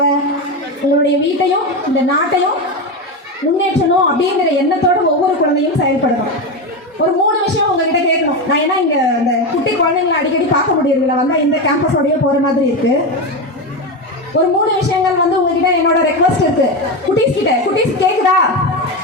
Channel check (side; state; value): both; normal; correlation 0.15